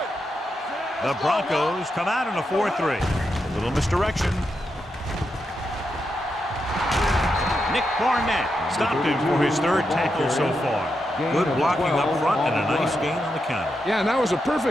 The Broncos come out in a 4-3. A little misdirection. Nick Barnett stopped him for his 3rd tackle so far. Good blocking up front and a nice gain on the counter. Yeah, and that was a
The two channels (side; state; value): both; normal; correlation 0.85